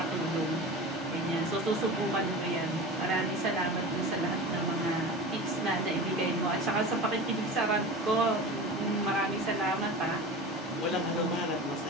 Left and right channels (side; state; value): both; normal; correlation 0.32